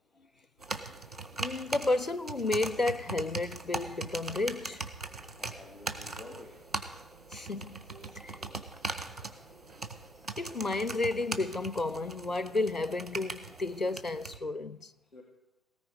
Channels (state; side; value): normal; both; correlation 0.73